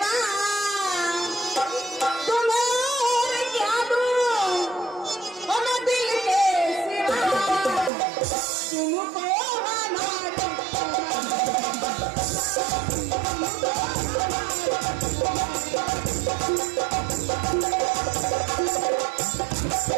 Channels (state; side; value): drops out; left; at 7.9 s